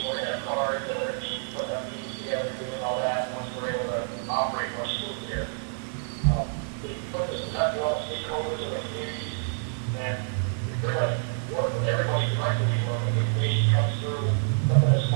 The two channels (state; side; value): silent; left; digital silence